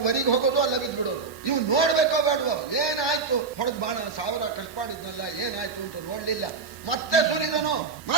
ವರಿಗೆ ಹೋಗೋದು, ಅಲ್ಲ ಬಿದ್ದು ಬಿಡೋದು. ಇವು ನೋಡ್ಬೇಕೋ ಬೇಡವೋ, ಏನಾಯ್ತು ಹೊಡೆದ್ ಬಾಣ, 1000 ಖರ್ಚು ಮಾಡಿದ್ನಲ್ಲ ಏನಾಯ್ತು ಅಂತ ನೋಡ್ಲಿಲ್ಲ. ಮತ್ತೆ ಸುರಿದನು,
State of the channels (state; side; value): quieter; left; 4.8 dB